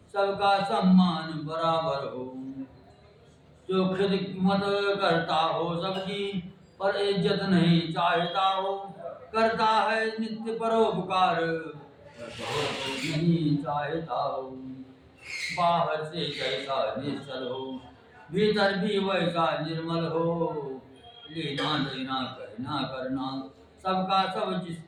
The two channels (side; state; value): both; identical; correlation 1.00